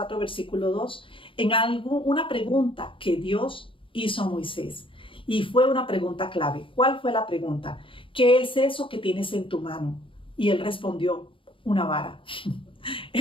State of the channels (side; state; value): right; late; 0.25 ms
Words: versículo 2, una pregunta que Dios hizo a Moisés. Y fue una pregunta clave. ¿Cuál fue la pregunta? ¿Qué es eso que tienes en tu mano? Y él respondió, una vara.